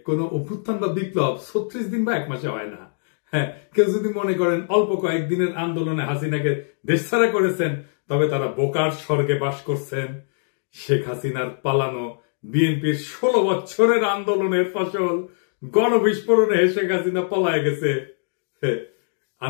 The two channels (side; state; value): right; silent; digital silence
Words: কোন অভ্যুত্থান বা বিপ্লব 36 দিন বা 1 মাসে হয় না। হ্যাঁ, কেউ যদি মনে করেন অল্প কয়েকদিনের আন্দোলনে হাসিনাকে দেশছাড়া করেছেন, তবে তারা বোকার স্বর্গে বাস করছেন। শেখ হাসিনার পালানো বিএনপির 16 বছরের আন্দোলনের ফসল গণবিস্ফোরণে শেখ হাসিনা পলায় গেছে।